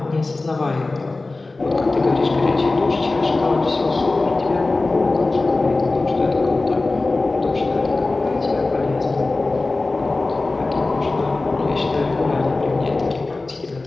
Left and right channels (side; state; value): right; quieter; 3.3 dB